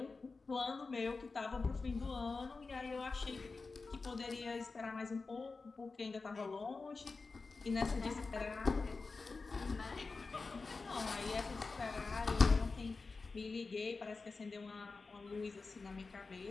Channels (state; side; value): quieter; right; 4.1 dB